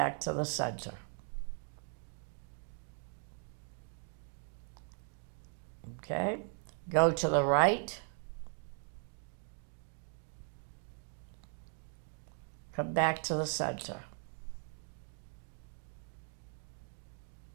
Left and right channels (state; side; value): silent; left; 52 dB below the other